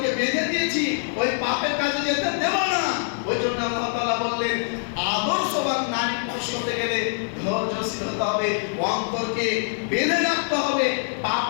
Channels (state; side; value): silent; right; 56 dB below the other